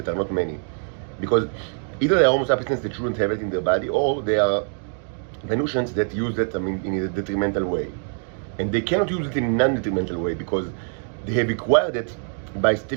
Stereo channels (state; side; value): silent; left; 56 dB below the other